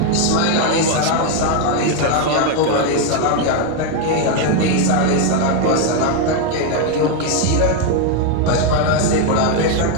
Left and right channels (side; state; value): both; different; correlation 0.01